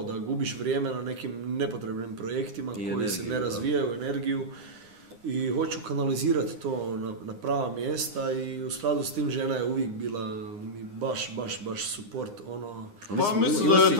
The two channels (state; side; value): late; left; 9.7 ms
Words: da gubiš vrijeme na nekim nepotrebnim projektima koji se ne razvijaju, energiju, i hoću kanalizirati to na prava mjesta i u skladu s tim žena je uvijek bila mi baš support, ono. Pa mislim da je